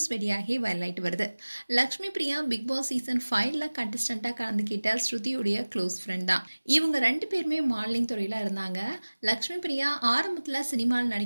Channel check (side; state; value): both; inverted; correlation -1.00